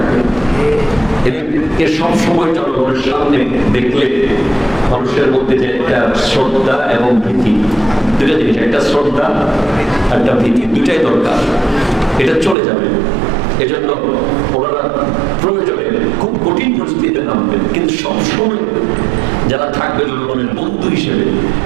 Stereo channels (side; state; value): left; drops out; at 12.6 s